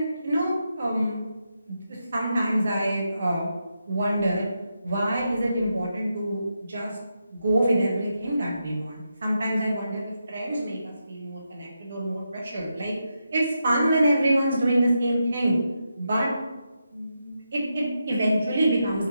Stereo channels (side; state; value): both; inverted; correlation -0.85